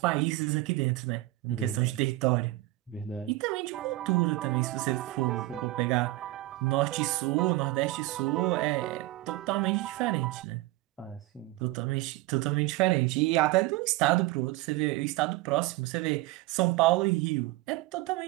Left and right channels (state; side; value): quieter; left; 18.9 dB